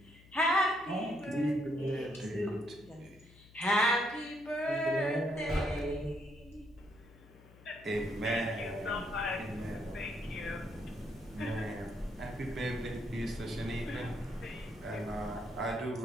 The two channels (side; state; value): left; noise; hum, 23 dB below the sound